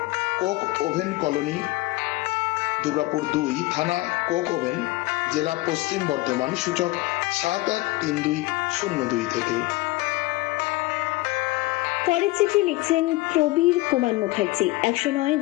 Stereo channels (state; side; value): quieter; right; 20.3 dB